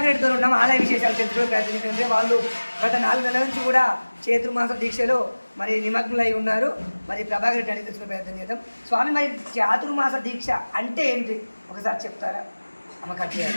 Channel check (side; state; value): both; inverted; correlation -1.00